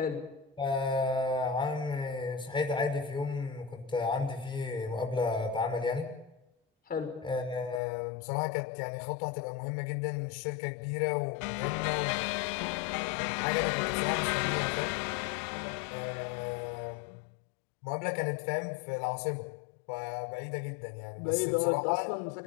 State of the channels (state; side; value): drops out; right; at 7.8 s